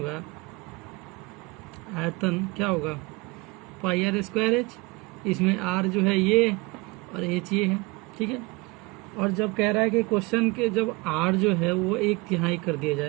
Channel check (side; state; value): left; quieter; 25.6 dB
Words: आयतन क्या होगा, पाई आर स्क्वायर एच। इसमें आर जो है ये और एच ये है, ठीक है। और जब कह रहा है कि क्वेश्चन के जब आर जो है वो एक तिहाई कर दिया